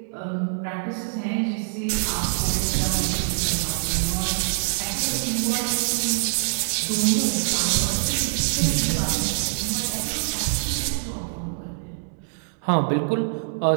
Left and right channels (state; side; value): silent; left; 62 dB below the other